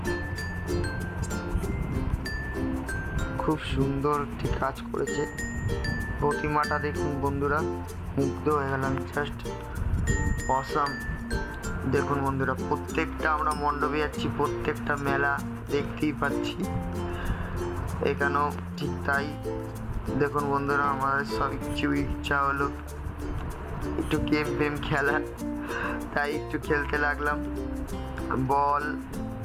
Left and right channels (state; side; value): identical; both; correlation 1.00